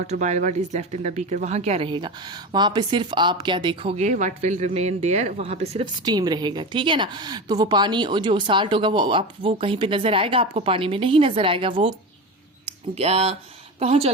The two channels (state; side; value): normal; both; correlation 0.24